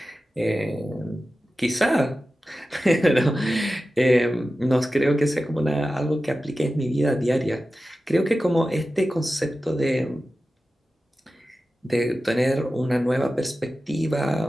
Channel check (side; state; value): both; normal; correlation 0.94